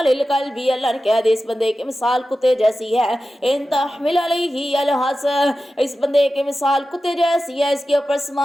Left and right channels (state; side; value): normal; both; correlation 0.93